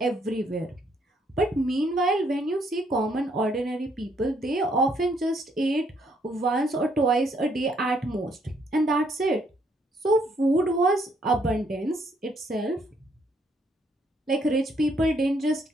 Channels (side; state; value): both; normal; correlation 0.70